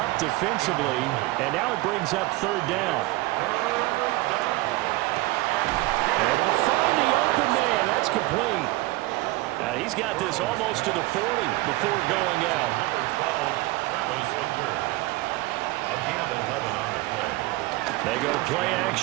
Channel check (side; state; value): left; quieter; 20.2 dB